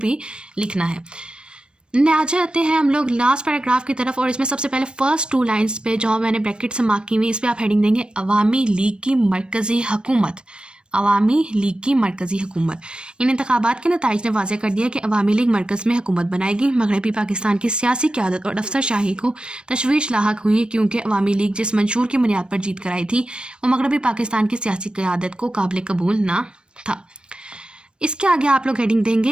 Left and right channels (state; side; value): late; left; 0.054 ms